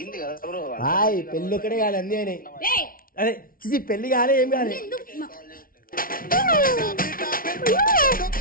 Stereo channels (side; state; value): right; late; 0.42 ms